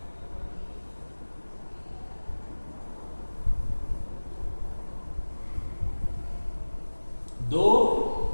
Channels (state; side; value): inverted; both; correlation -1.00